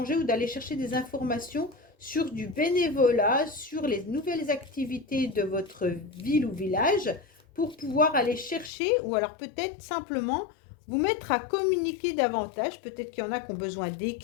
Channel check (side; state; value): right; drops out; at 8.7 s